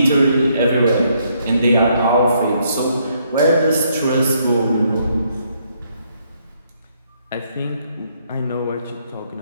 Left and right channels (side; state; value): both; inverted; correlation -0.72